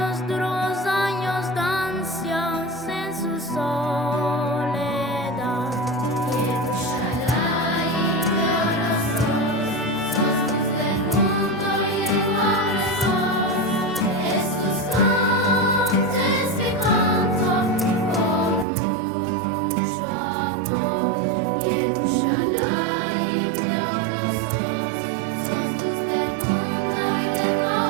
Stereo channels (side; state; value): left; drops out; at 18.7 s